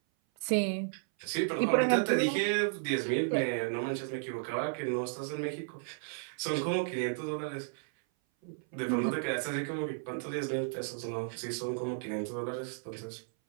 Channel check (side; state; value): left; silent; 55 dB below the other